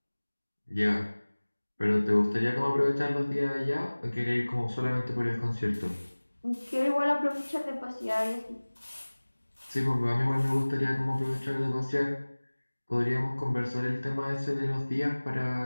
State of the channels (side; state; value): both; inverted; correlation -1.00